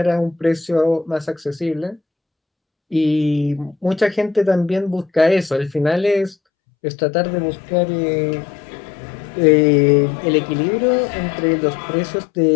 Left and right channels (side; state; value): right; drops out; at 6.4 s